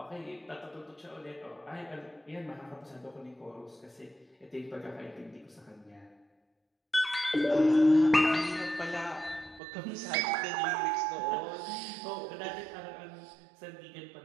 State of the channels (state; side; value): drops out; left; at 9.6 s